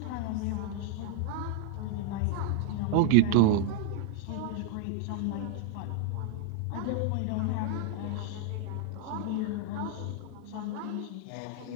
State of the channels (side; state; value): both; different; correlation 0.00